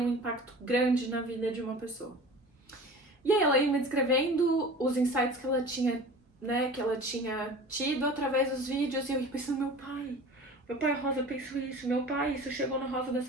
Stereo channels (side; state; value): both; normal; correlation 0.39